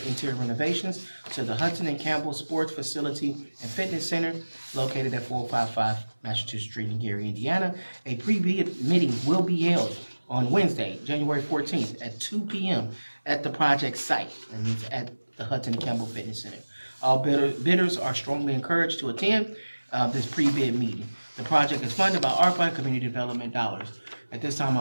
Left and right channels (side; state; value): both; inverted; correlation -1.00